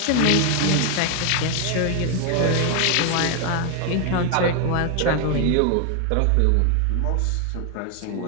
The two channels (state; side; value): different; both; correlation 0.00